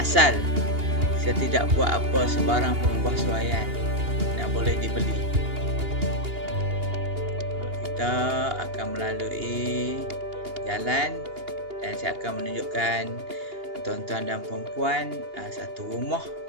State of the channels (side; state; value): left; late; 2.8 ms